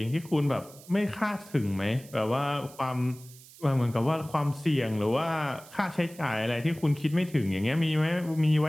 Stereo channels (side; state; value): right; noise; hiss, 21 dB below the sound